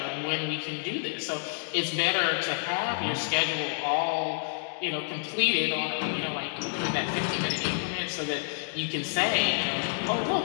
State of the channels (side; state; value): right; silent; digital silence